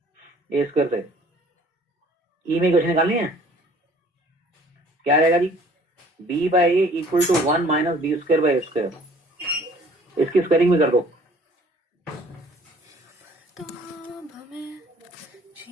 ए स्क्वायर से. ई में इक्वेशन निकालनी है. क्या रहेगा जी? B by a equal to 1 minus b square by a square. इसकी स्क्वायरिंग भी कर दो.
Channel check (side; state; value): both; normal; correlation 0.54